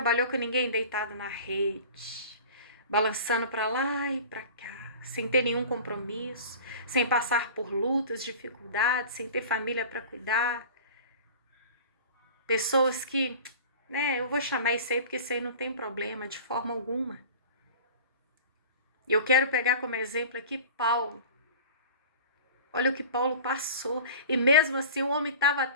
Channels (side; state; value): both; inverted; correlation -0.39